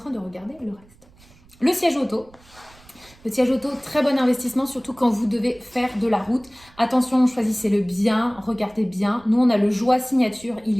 de regarder le reste. Le siège auto. Le siège auto, très bon investissement, surtout quand vous devez faire de la route. Attention, choisissez-le bien, regardez bien. Nous, on a le Joie Signature,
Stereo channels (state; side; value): noise; right; rumble, 27 dB below the sound